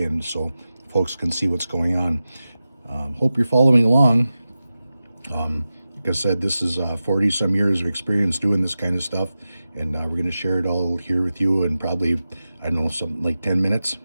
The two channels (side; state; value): both; inverted; correlation -0.93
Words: and so folks can see what's going on. Hope you're following along. Like I said, this is 40 some years of experience doing this kind of stuff, and we're going to share it all here with you in probably, I don't know, something like 10 minutes.